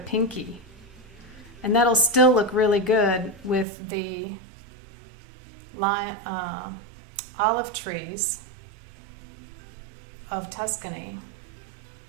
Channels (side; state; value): left; drops out; at 3.7 s